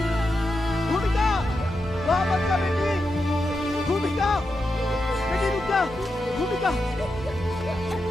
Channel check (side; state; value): both; normal; correlation 0.87